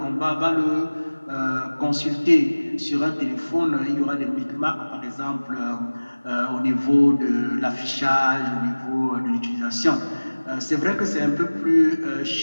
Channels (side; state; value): both; inverted; correlation -1.00